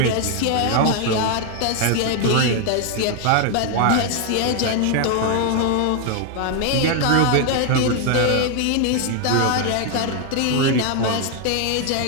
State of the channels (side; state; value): both; different; correlation 0.01